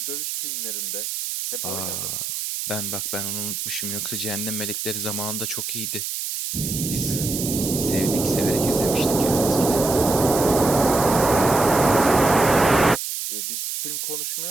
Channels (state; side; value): noise; right; hiss, 4 dB below the sound